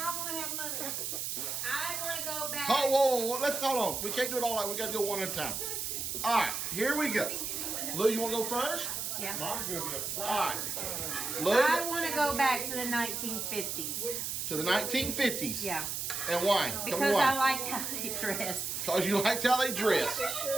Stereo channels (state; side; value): noise; right; hiss, 3 dB below the sound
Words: want to have money. I want to go back. Oh, whoa, let's hold on. We can't do it all like we got to go one at a time. All right, here we go. Lou, you want to go first? Yeah. Mom's gonna be a All fly. right. Lou, I want to go back to the 1950s. to the 1950s. Yeah. And why? Tell me Because I why. liked how they dressed. Because you liked how they dressed.